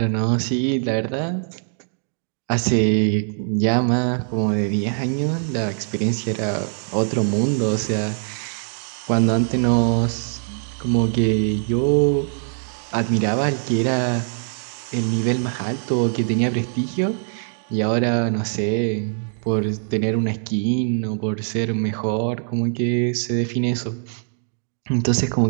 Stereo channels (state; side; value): silent; left; digital silence